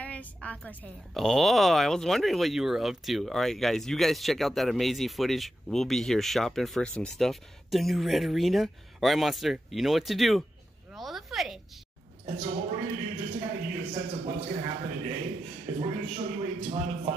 Aqua's Hail. Oh, I was wondering what you were up to. All right, guys, you guys check out that amazing footage. We'll be here shopping for some stuff. The new Red Arena. All right, Monster, you know what to do. Roll the footage. And so what we're going to do, just to kind of give you a sense of what's going to happen today, is we're going to show you a ton of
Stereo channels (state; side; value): normal; both; correlation 0.89